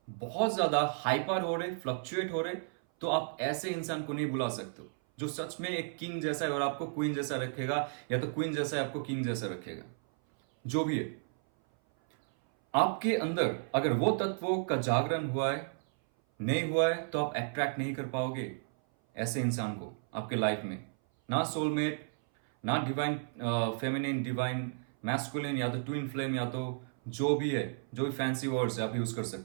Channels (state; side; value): silent; left; 56 dB below the other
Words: बहुत ज्यादा हाइपर हो रहे, फ्लक्चुएट हो रहे, तो आप ऐसे इंसान को नहीं बुला सकते जो सच में एक किंग जैसा है और आपको क्वीन जैसा रखेगा, या तो क्वीन जैसा है आपको किंग जैसा रखेगा। जो भी है, आपके अंदर अगर वो तत्वों का जागरण हुआ है, नहीं हुआ है, तो आप अट्रैक्ट नहीं कर पाओगे ऐसे इंसान को आपके लाइफ में। ना सोलमेट, ना डिवाइन फेमिनिन, डिवाइन मैस्कुलिन, या तो ट्विन फ्लेम, या तो जो भी है, जो भी फैंसी वर्ड्स है आप यूज कर